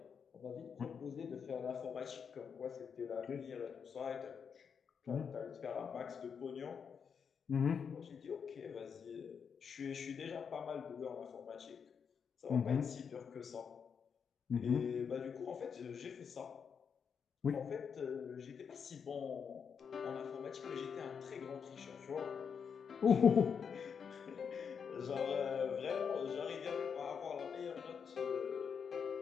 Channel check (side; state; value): right; quieter; 6.6 dB